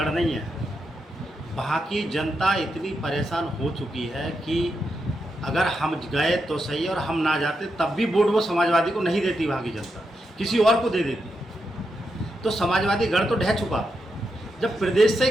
नहीं है। वहाँ की जनता इतनी परेशान हो चुकी है कि अगर हम गए तो सही और हम ना जाते तब भी वोट वो समाजवादी को नहीं देती। वहाँ की जनता किसी और को दे देती। तो समाजवादी गढ़ तो ढह चुका। जब प्रदेश से ही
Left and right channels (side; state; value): both; normal; correlation 0.85